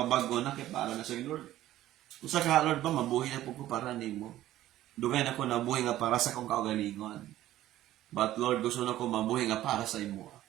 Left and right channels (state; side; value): quieter; left; 14.1 dB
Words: na kay para na sa Lord. Kung sa ka, Lord ba, mabuhi na po ko para nimo. Dugay na ko nabuhi nga para sa kong kaugalingon. But Lord, gusto na ko mabuhi nga para sa imo.